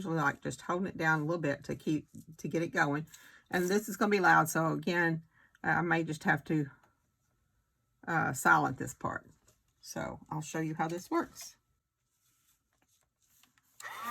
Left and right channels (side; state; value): both; identical; correlation 1.00